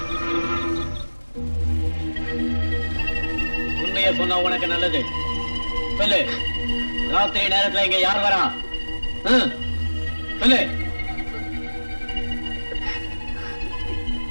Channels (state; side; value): inverted; both; correlation -1.00